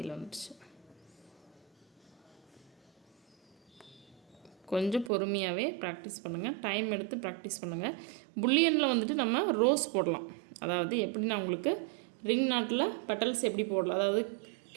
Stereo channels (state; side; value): drops out; left; at 5.1 s